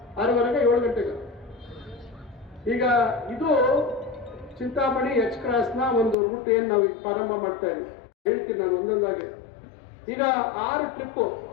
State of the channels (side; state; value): right; drops out; at 6.2 s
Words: 6:30 7 ಗಂಟೆಗೆ. ಈಗ ಇದು ಚಿಂತಾಮಣಿ H ಕ್ರಾಸ್ನ ಒಂದು ರೂಟ್ ಏನ್ ನಾವು ಪ್ರಾರಂಭ ಮಾಡ್ತಾ ಇದ್ದೀವಿ. ಹೇಳ್ತೀನಿ ನಾನು ಒಂದೊಂದಾಗಿ. ಈಗ 6 ಟ್ರಿಪ್